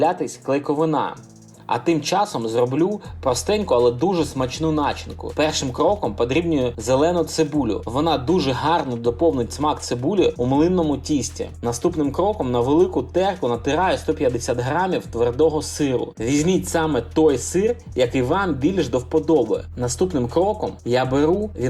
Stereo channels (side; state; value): both; identical; correlation 1.00